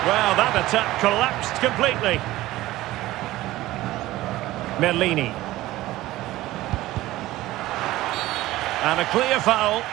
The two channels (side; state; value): left; quieter; 16.7 dB